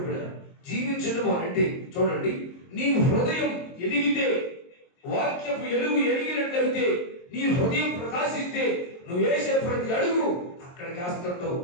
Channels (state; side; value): late; right; 22 ms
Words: జీవించడం అంటే చూడండి, నీ హృదయం ఎదిగితే, వాక్యపు ఎలుగు ఎదిగినట్లయితే, నీ హృదయం ప్రకాశిస్తే, నువ్వు వేసే ప్రతి అడుగు అక్కడ కాస్తుంటావు,